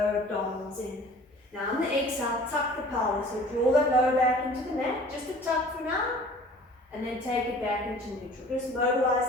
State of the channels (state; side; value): normal; both; correlation 0.48